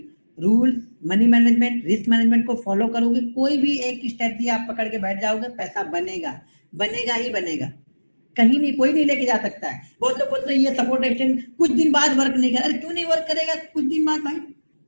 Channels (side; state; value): both; inverted; correlation -1.00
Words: rule, money management, risk management को फॉलो करोगे, कोई भी एक स्ट्रेटजी आप पकड़ के बैठ जाओगे, पैसा बनेगा, बनेगा ही बनेगा। कहीं नहीं, कोई नहीं लेके जा सकता है। बहुत लोग बोलते हैं ये सपोर्ट एक्सटेंड कुछ दिन बाद वर्क नहीं करेगा। अरे क्यों नहीं वर्क करेगा कुछ दिन बाद भाई?